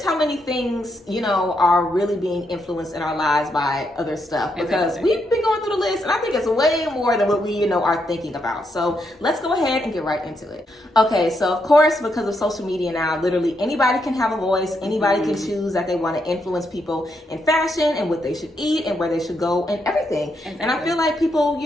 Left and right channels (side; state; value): both; normal; correlation 0.79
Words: how many things, are really being influenced in our lives by other stuff. Because we've been going through the list, and I think it's way more than what we, are thinking about. So let's go ahead and get right into it. Okay, so of course, because of social media now, literally anybody can have a voice. Anybody can choose that they want to influence people in fashion and what they should eat and where they should go and everything. Exactly. And I feel like people,